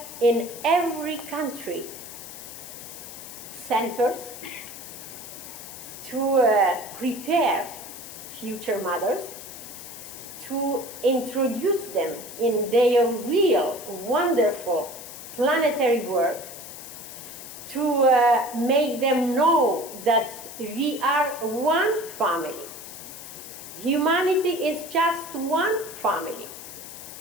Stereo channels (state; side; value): noise; left; hiss, 12 dB below the sound